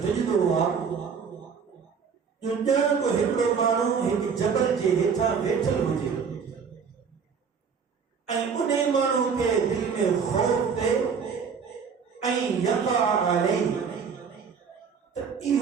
ججد ہوا جو جان کو ہمرو مانو ایک جبل جے ہیٹھا بیٹھل ہو جے این انہیں مانو کے دل میں خوف دے این یقع علی تو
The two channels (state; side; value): quieter; left; 6.2 dB